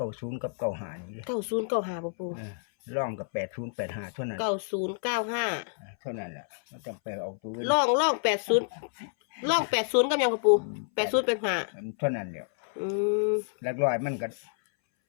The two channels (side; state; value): right; silent; 59 dB below the other